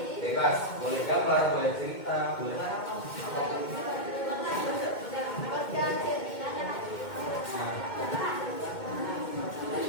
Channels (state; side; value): late; right; 2.2 ms